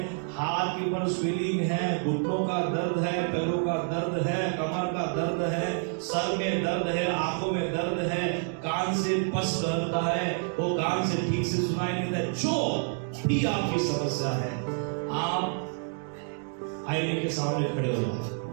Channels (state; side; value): silent; left; 59 dB below the other